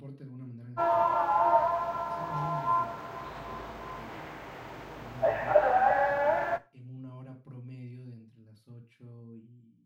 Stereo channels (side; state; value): both; identical; correlation 1.00